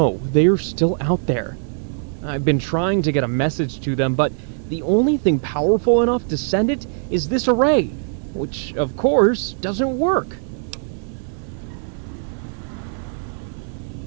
they're still out there. I've been trying to get a message to them, but the only thing powerful enough to send it is this array, which, of course, doesn't work.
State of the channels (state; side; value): silent; left; 58 dB below the other